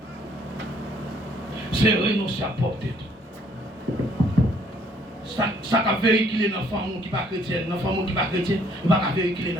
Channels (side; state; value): both; normal; correlation 0.63